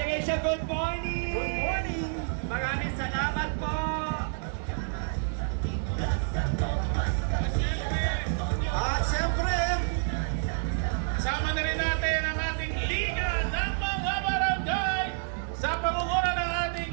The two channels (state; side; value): silent; left; digital silence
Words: good morning! Good morning. Maraming salamat po! At siyempre, Kasama na rin natin ang ating Liga ng mga Barangay sa pangunguna ng ating